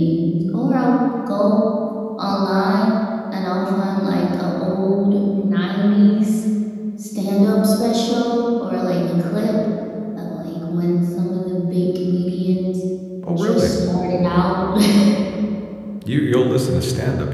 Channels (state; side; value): identical; both; correlation 1.00